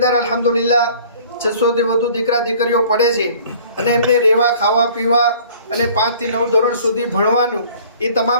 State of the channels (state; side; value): inverted; both; correlation -0.51